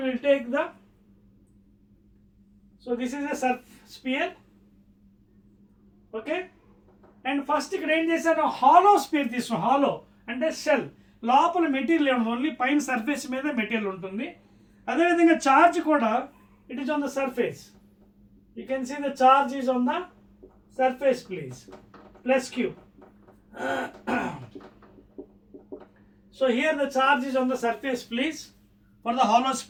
will take the, so this is a sphere. And first ఇక్కడ ఏం చేశాను, హాలో స్పియర్ తీసుకున్నాం. హాలో అంటే షెల్, లోపల మెటీరియల్ ఏమన్నా, ఓన్లీ పైన సర్ఫేస్ మీద మెటీరియల్ ఉంటుంది. అదేవిధంగా చార్జ్ కూడా it is on the surface. You can see the charge is on the surface please, plus Q. So here the charge is on the surface please for the hollow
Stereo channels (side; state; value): both; identical; correlation 1.00